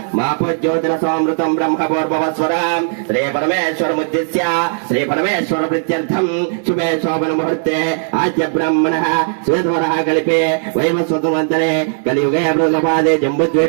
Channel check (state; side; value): silent; left; digital silence